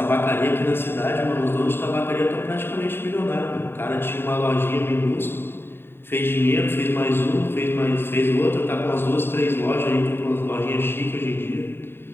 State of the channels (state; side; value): late; right; 0.11 ms